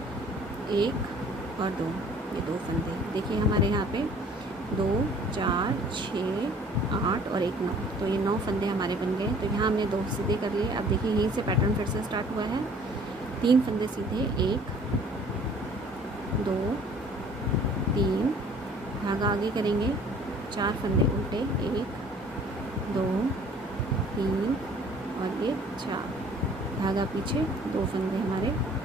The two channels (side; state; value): both; normal; correlation 0.53